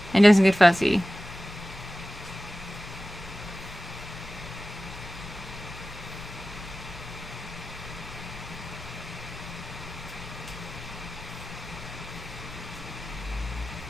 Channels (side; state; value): both; normal; correlation 0.95